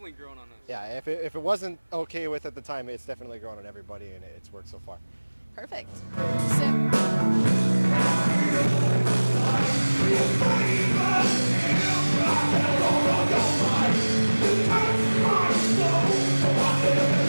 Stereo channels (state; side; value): inverted; both; correlation -1.00